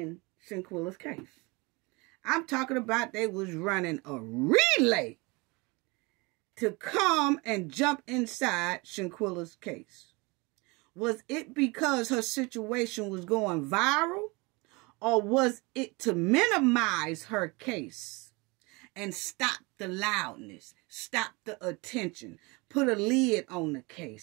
Shanquella's case? I'm talking about they was running a relay to come and jump inside Shanquella's case. Was it because her situation was going viral? Or was it to minimize her case and stop the loudness, stop the attention, put a lid on the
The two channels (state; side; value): quieter; left; 26.4 dB